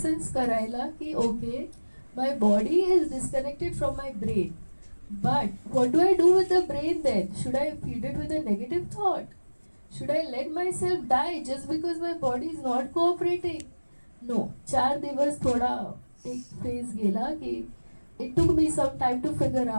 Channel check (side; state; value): both; inverted; correlation -1.00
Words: करायला की okay my body is disconnected from my brain, but what do I do with the brain then? Should I feed it with a negative thought? Should I let myself die just because my body is not cooperating? No. 4 दिवस थोडा एक phase गेला की it took me some time to figure